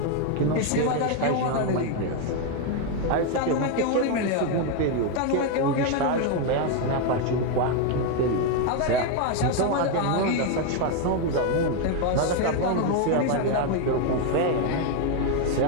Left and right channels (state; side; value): different; both; correlation 0.01